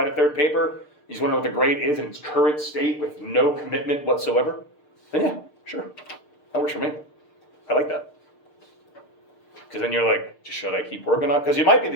a third paper, you just want to know what the grade is in its current state with no commitment whatsoever, then yeah, sure. That works for me. I like that. Because then you're like, should I keep working on it? Because it might be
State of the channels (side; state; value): right; late; 6.6 ms